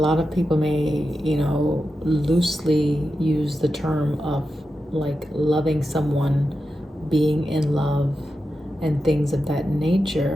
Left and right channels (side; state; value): both; normal; correlation 0.90